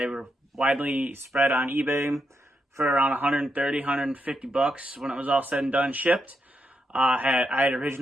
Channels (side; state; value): both; normal; correlation 0.82